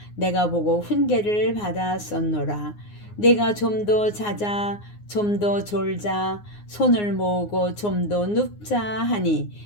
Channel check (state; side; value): late; right; 9.6 ms